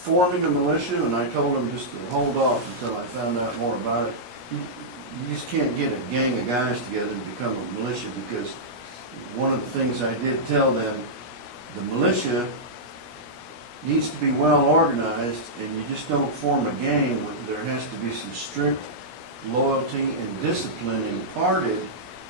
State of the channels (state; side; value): late; left; 16 ms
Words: a militia, and I told them just to hold off until I found out more about it. You just can't get a gang of guys together and become a militia, because one of the things I did tell them, the militia needs to be well organized, and you just don't form a gang with, there has to be some strict loyalty and discipline imparted